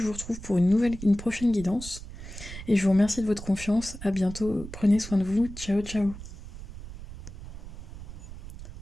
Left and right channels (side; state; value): right; noise; rumble, 12 dB below the sound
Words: vous retrouve pour une prochaine guidance. Et je vous remercie de votre confiance. À bientôt. Prenez soin de vous. Ciao, ciao.